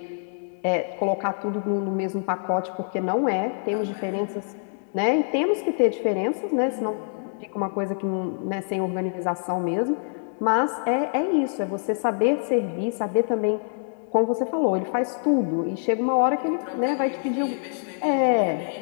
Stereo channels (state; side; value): silent; right; digital silence